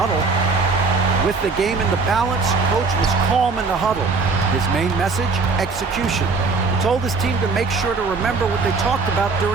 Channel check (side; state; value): left; quieter; 4.1 dB